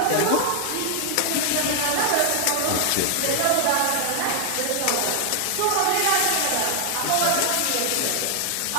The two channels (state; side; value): different; both; correlation 0.00